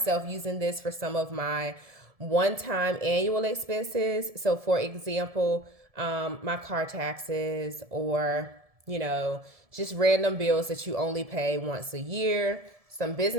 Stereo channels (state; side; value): late; left; 1.7 ms